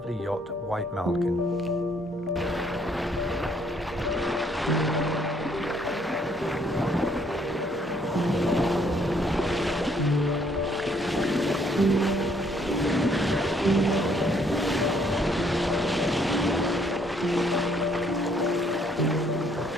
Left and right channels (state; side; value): normal; both; correlation 0.66